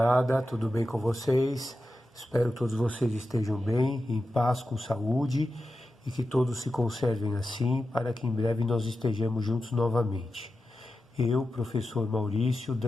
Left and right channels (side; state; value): both; normal; correlation 0.91